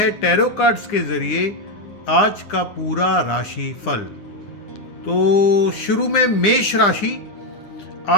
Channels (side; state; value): right; late; 9.8 ms